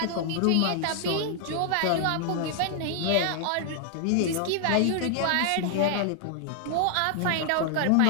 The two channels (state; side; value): different; both; correlation 0.00